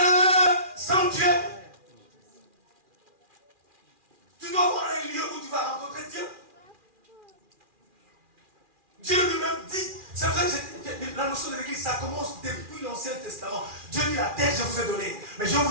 sanctuaire. Tu dois avoir un lieu où tu vas rencontrer Dieu. Dieu lui-même dit, c'est vrai que la notion de l'église, ça commence depuis l'Ancien Testament. Dieu dit, la terre, je vous ai donné. Mais je vais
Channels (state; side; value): late; left; 2.4 ms